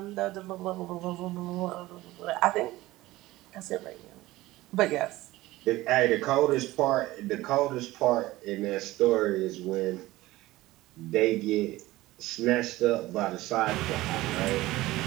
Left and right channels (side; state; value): left; quieter; 18.0 dB